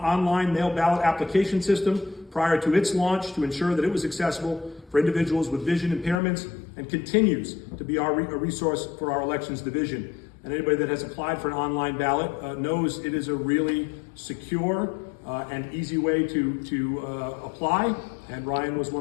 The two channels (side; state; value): right; drops out; at 6.2 s